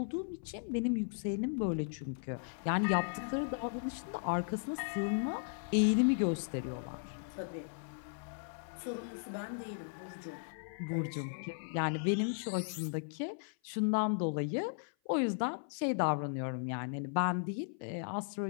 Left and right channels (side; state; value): right; silent; 53 dB below the other